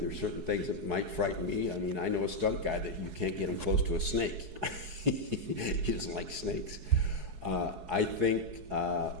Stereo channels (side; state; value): left; late; 4.7 ms